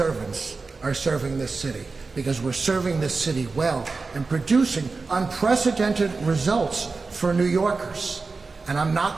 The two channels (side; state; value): left; quieter; 4.1 dB